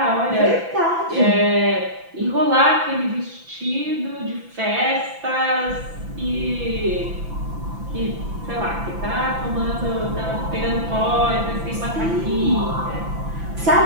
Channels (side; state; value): left; late; 6.0 ms